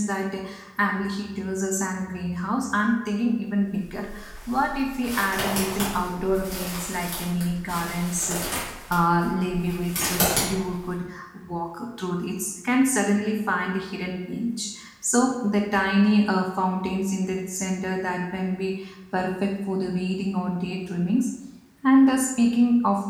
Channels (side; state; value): both; identical; correlation 1.00